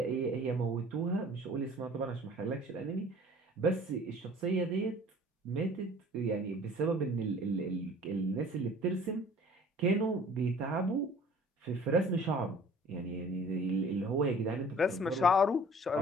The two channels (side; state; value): both; normal; correlation 0.49